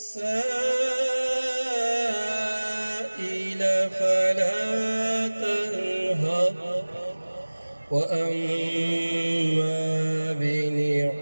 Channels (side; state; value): both; inverted; correlation -1.00